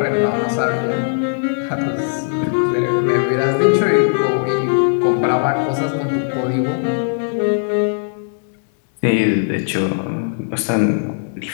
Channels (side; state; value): right; silent; digital silence